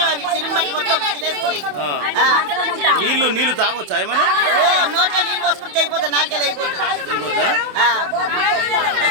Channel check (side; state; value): left; late; 27 ms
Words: అవి. సిరిమట్టి మొత్తం తినేస్తున్నాయి. నీళ్లు తాగొచ్చా ఏమన్నా? నోట్లో నీళ్ళు పోసుకుంటే అయిపోతుంది, నాలుగేది అయిపోతుంది.